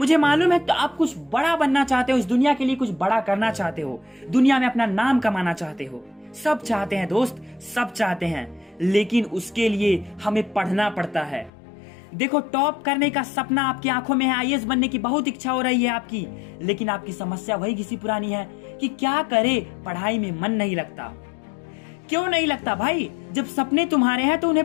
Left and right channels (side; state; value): right; drops out; at 11.5 s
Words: मालूम है तो आप कुछ बड़ा बनना चाहते हो, इस दुनिया के लिए कुछ बड़ा करना चाहते हो, दुनिया में अपना नाम कमाना चाहते हो। सब चाहते हैं दोस्त, सब चाहते हैं, लेकिन उसके लिए हमें पढ़ना पड़ता है। देखो, टॉप करने का सपना आपकी आंखों में है, आईएएस बनने की बहुत इच्छा हो रही है आपकी, लेकिन आपकी समस्या वही घिसी पुरानी है कि क्या करे, पढ़ाई में मन नहीं लगता। क्यों नहीं लगता भाई? जब सपने तुम्हारे हैं तो